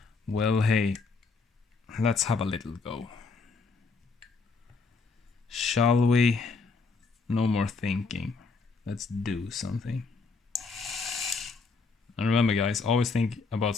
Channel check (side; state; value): right; quieter; 4.4 dB